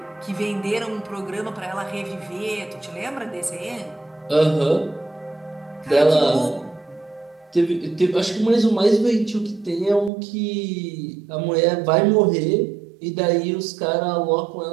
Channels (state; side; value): drops out; left; at 10.1 s